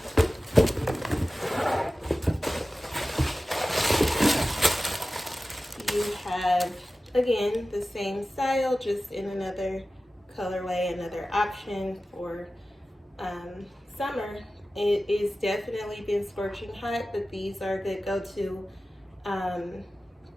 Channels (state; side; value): normal; both; correlation 0.96